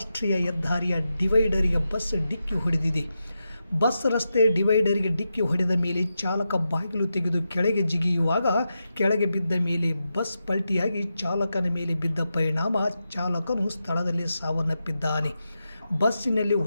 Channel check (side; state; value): both; inverted; correlation -0.88